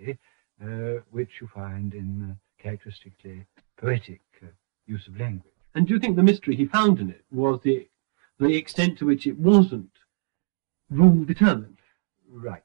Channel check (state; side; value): silent; left; digital silence